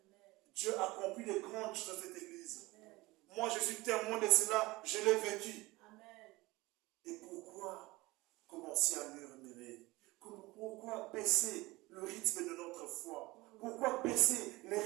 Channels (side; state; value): left; quieter; 21.1 dB